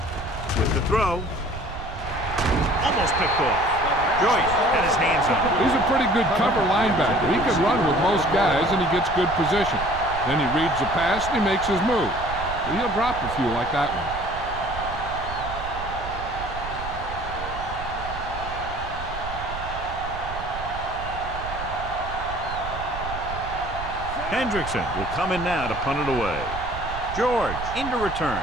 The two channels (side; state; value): right; noise; rumble, 10 dB below the sound